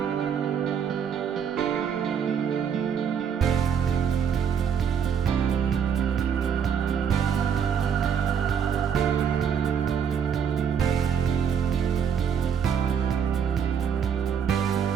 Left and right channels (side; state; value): left; quieter; 7.6 dB